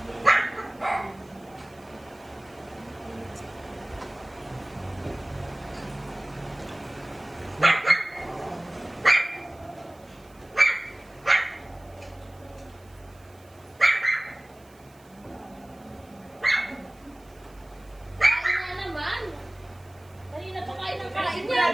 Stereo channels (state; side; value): noise; right; hiss, 29 dB below the sound